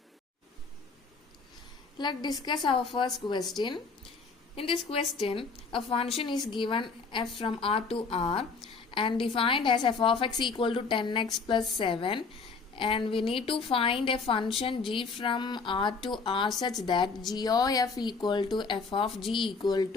Let's discuss our first question. In this question, a function is given f from R to R and defined as f of x equal to 10x plus 7, and we need to find a function g from R to R such that g of f equal to f of g equal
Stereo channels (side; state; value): right; quieter; 4.6 dB